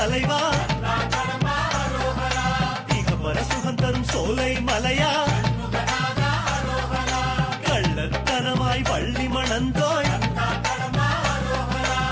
இகபர சுகம் தரும் சோலை மலையா, கள்ளத்தனமாய் வள்ளி மணந்தோய்,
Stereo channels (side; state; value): both; identical; correlation 1.00